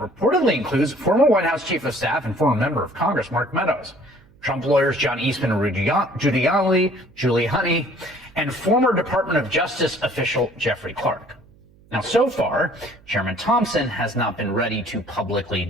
includes former White House Chief of Staff and former member of Congress Mark Meadows, Trump lawyers John Eastman and Giuliani, and former Department of Justice official Jeffrey Clark. Now, so far, Chairman Thompson has not been ready to publicly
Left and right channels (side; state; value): right; noise; hum, 28 dB below the sound